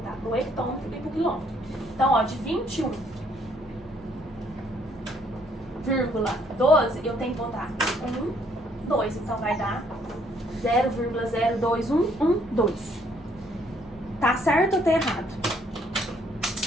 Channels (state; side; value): normal; both; correlation 0.66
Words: pro hectômetro e pro quilômetro. Então, ó, de 21,12, eu tenho que voltar 1, 2. Então, vai dar 0,0211, Tá certo ou tá errado?